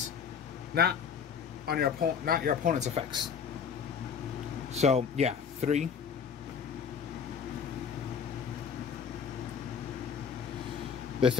not your opponent's effects. So yeah, 3. The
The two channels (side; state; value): right; quieter; 6.9 dB